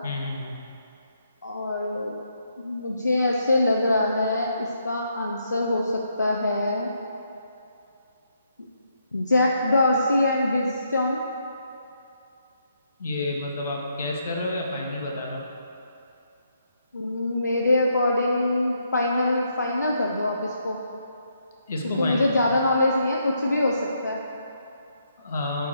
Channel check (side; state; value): both; inverted; correlation -0.76